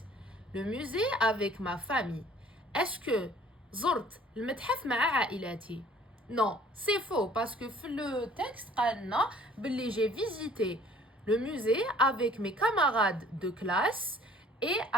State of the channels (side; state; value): both; normal; correlation 0.54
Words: le musée avec ma famille. Est-ce que زرت المتحف مع عائلتي? Non, c'est faux parce que le texte قالنا باللي j'ai visité le musée avec mes camarades de classe et